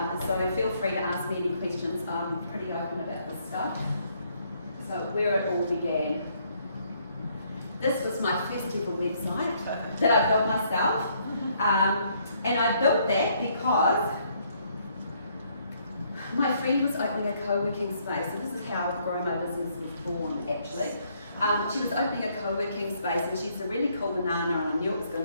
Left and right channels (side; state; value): both; inverted; correlation -0.69